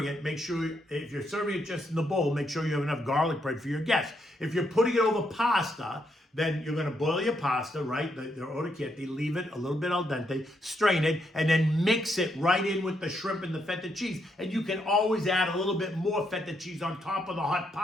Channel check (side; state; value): both; normal; correlation 0.78